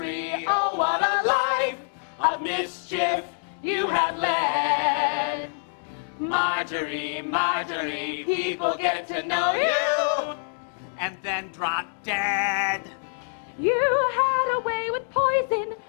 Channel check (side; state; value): right; silent; digital silence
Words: oh what a life of mischief you had led. Marjorie, Marjorie, people get to know you and then drop dead. You had a way with poison